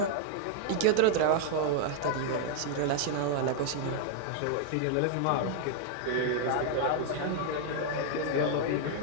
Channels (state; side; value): different; both; correlation 0.00